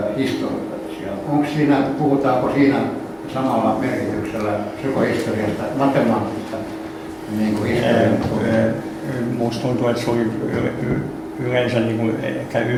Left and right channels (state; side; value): identical; both; correlation 1.00